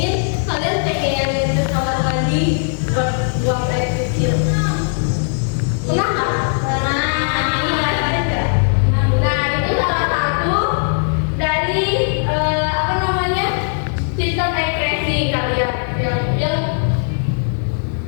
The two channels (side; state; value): right; silent; digital silence